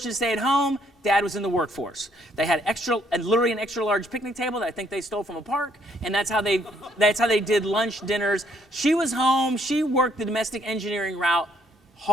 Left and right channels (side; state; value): both; normal; correlation 0.68